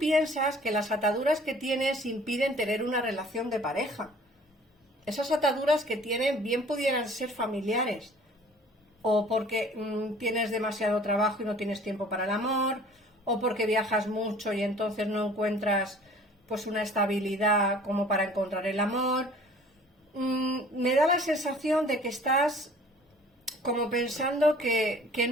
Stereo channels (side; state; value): both; normal; correlation 0.51